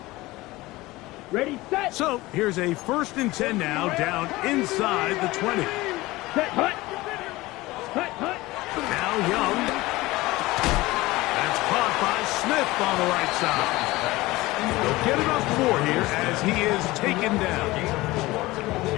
Ready, set. So here's a 1st and 10 now, down inside the 20. Set, hut. Hut, hut. Now Young. That's caught by Smith on the right side. They'll get it up 4 here as he is taken down.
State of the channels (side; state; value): right; quieter; 19.7 dB